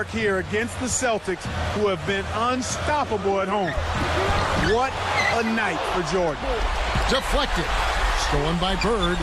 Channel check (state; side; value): identical; both; correlation 1.00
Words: here against the Celtics, who have been unstoppable at home. What a night for Jordan. Deflected. Stolen by Bird.